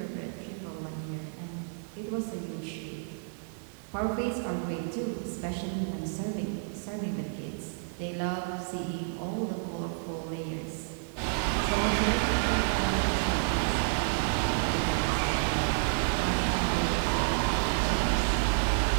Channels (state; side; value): silent; left; 58 dB below the other